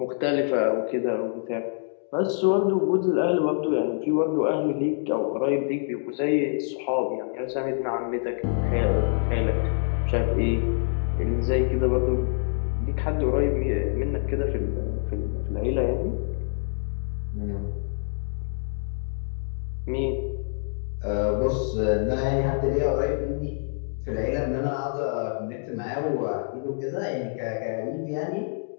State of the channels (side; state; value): right; silent; digital silence